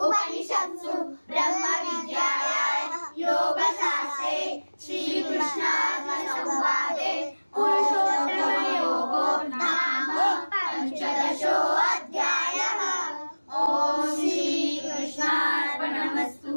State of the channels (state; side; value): inverted; both; correlation -1.00